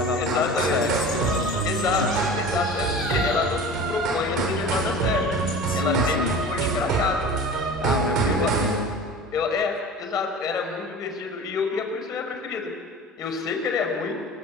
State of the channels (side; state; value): both; normal; correlation 0.37